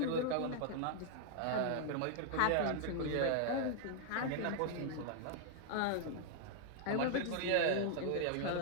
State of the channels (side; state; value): both; different; correlation 0.00